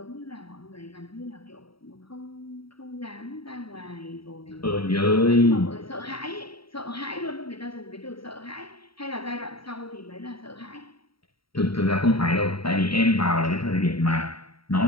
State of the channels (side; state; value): right; late; 0.75 ms